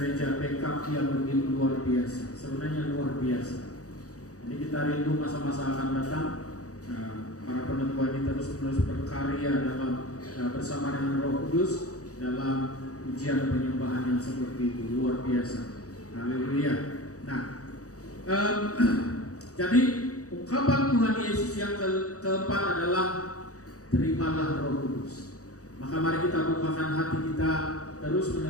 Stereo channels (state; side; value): late; right; 0.66 ms